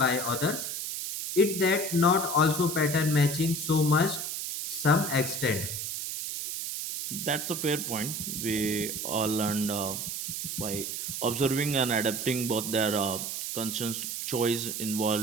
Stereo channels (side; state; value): right; noise; hiss, 4 dB below the sound